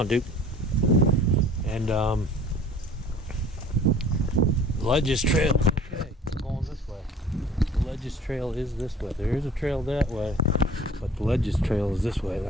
Duke. And Ledges Trail. Okay, we're going this way. The Ledges Trail is this way. There is a trail that way, but the Ledges Trail is this way.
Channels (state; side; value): normal; both; correlation 0.49